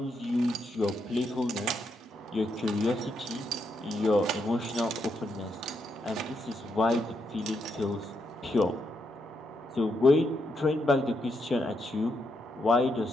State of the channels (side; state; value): both; normal; correlation 0.80